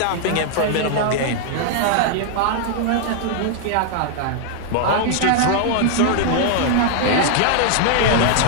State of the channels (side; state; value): both; different; correlation 0.00